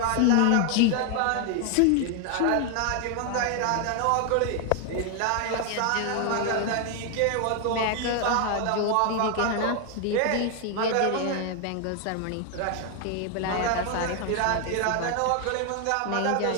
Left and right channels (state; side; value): different; both; correlation 0.01